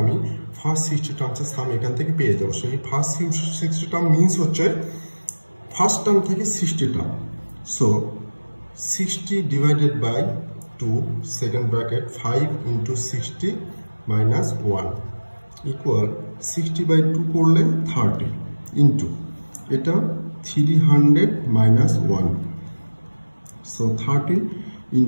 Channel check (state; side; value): inverted; both; correlation -1.00